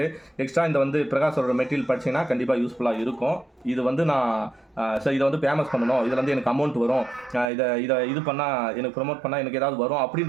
எக்ஸ்ட்ரா இந்த வந்து பிரகாஷோட மெட்டீரியல் படிச்சிங்கன்னா கண்டிப்பாக யூஸ்ஃபுல்லாக இருக்கும். இது வந்து நான் சார் இதை வந்து ஃபேமஸ் பண்ணணும், இதில் வந்து எனக்கு அமௌண்ட் வரும், இது பண்ணால் எனக்கு ப்ரொமோட் பண்ணால் எனக்கு ஏதாவது வரும்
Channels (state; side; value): drops out; left; at 7.5 s